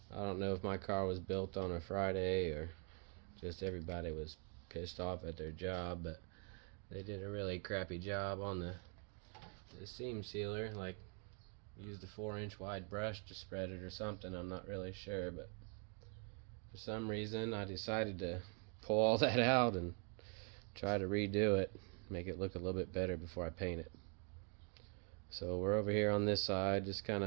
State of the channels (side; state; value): left; quieter; 38.7 dB